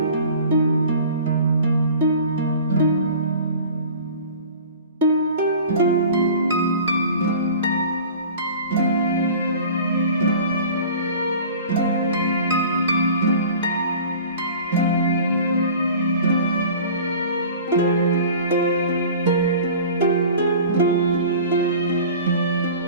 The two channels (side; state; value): both; inverted; correlation -0.41